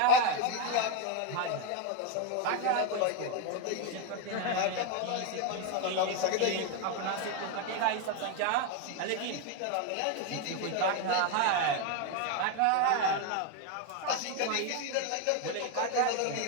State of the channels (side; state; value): both; different; correlation 0.02